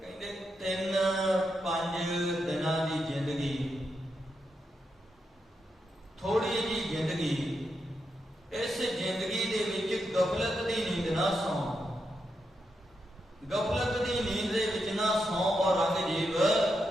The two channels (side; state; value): both; normal; correlation 0.84